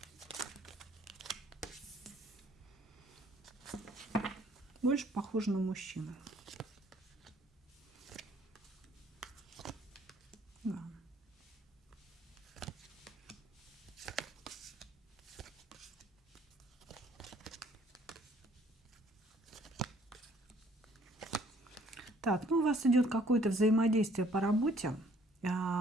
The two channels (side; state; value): both; normal; correlation 0.60